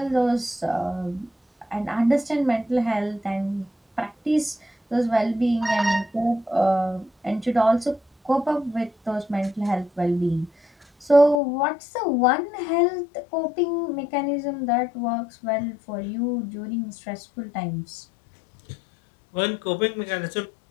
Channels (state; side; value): drops out; right; at 11.4 s